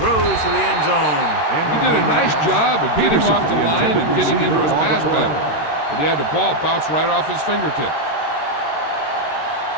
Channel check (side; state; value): right; late; 13 ms